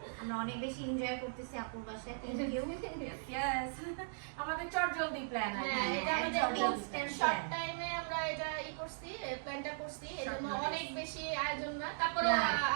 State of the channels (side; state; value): left; silent; digital silence